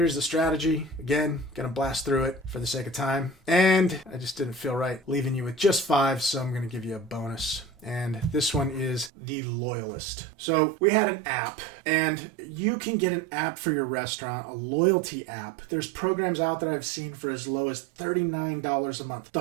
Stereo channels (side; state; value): left; drops out; at 9.1 s